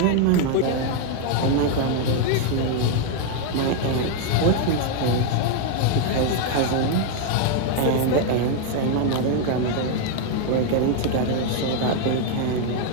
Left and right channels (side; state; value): both; different; correlation 0.01